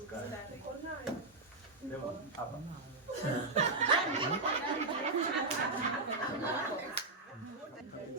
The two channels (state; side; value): quieter; left; 3.3 dB